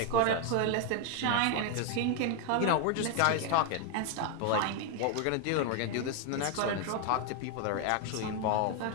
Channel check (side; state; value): both; different; correlation 0.01